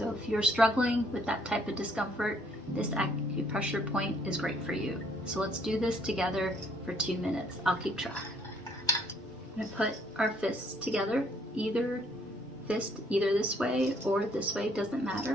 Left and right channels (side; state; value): both; normal; correlation 0.65